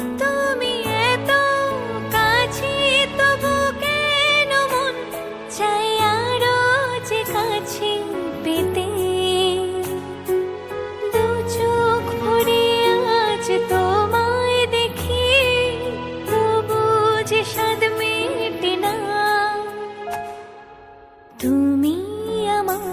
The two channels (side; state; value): both; identical; correlation 1.00